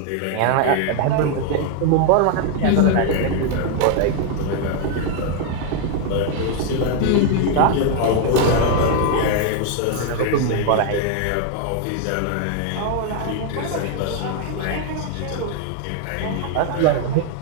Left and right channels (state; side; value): different; both; correlation 0.00